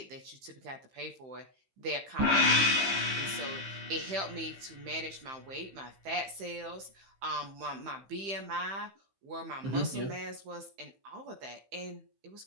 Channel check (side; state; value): left; late; 15 ms